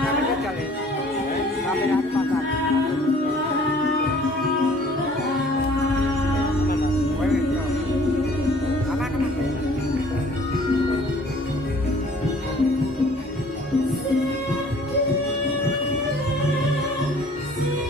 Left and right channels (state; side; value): normal; both; correlation 0.53